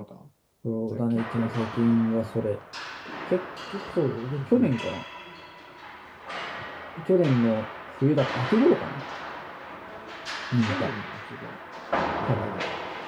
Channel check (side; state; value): both; identical; correlation 1.00